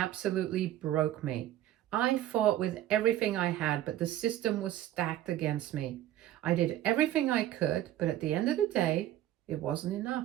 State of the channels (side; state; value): left; quieter; 13.0 dB